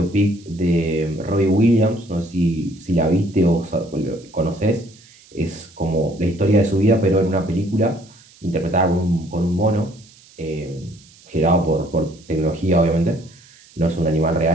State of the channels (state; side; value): noise; right; hiss, 26 dB below the sound